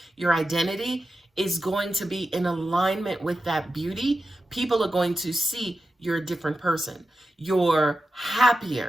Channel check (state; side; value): normal; both; correlation 0.91